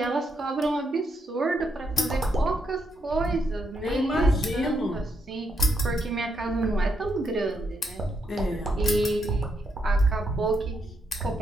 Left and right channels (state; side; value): normal; both; correlation 0.79